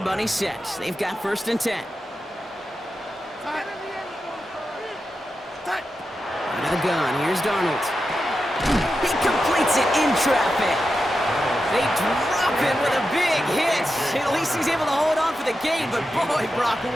set. They've got first and 10. Out of the gun, here's Darnold. He completes it in traffic. They drop him with a big hit. At least he's able to hold on for the game, but boy, Brock,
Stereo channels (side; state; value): both; normal; correlation 0.90